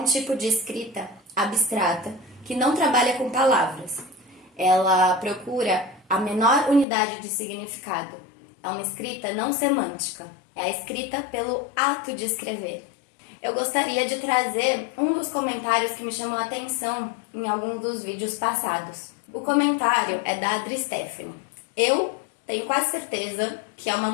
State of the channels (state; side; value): drops out; right; at 6.9 s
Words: tipo de escrita abstrata que não trabalha com palavras. Ela procura a menor unidade de significado. É uma escrita não semântica, é a escrita pelo ato de escrever. Eu gostaria de trazer um dos comentários que me chamou a atenção em alguns dos vídeos passados. O comentário é da Adri Stephanie. Eu tenho quase certeza que é uma